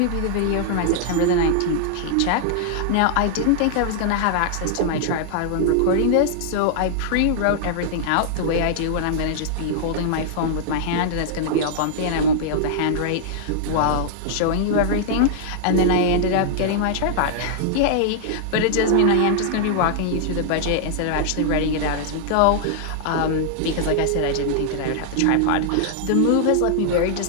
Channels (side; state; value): both; different; correlation -0.01